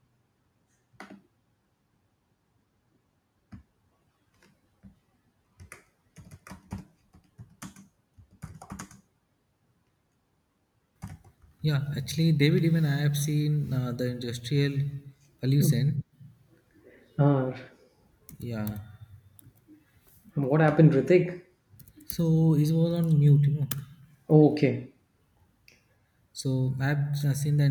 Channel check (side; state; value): both; identical; correlation 1.00